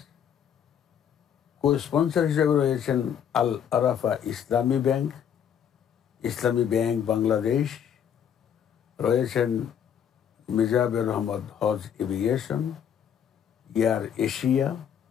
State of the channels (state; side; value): quieter; right; 8.6 dB